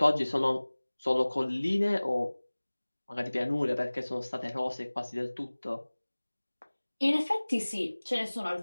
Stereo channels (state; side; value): inverted; both; correlation -1.00